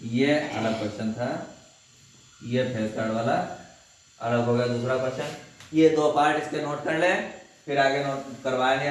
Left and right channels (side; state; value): both; identical; correlation 1.00